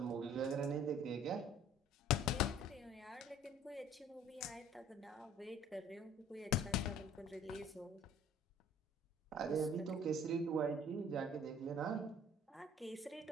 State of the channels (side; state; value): both; normal; correlation 0.52